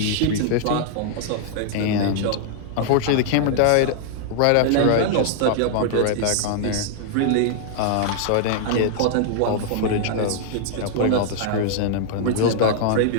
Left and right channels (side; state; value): both; different; correlation -0.01